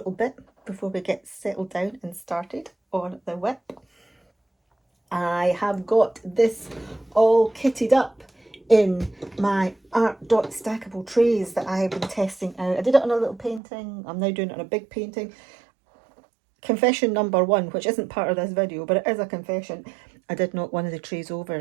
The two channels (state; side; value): drops out; left; at 13.6 s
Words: bit before we get settled down and started on the whip. I have got this all kitted up in my Art Dot stackable trays that I have been testing out. I did it on a little painting. I'm now doing it on a big painting. Confession number 1, which isn't part of this video, but it is a confession. I did knock one of the trays